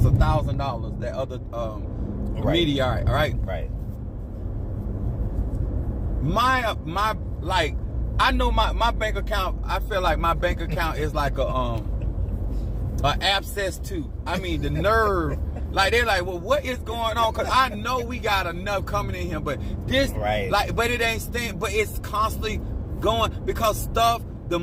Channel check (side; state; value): both; identical; correlation 1.00